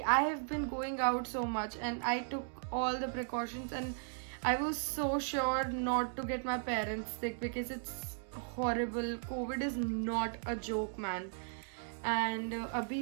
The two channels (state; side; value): silent; left; digital silence